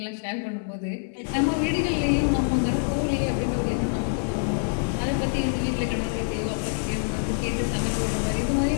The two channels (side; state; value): right; silent; digital silence